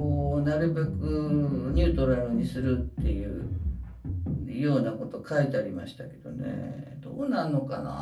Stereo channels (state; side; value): identical; both; correlation 1.00